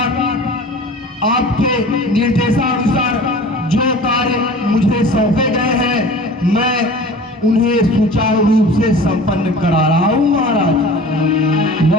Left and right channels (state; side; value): normal; both; correlation 0.41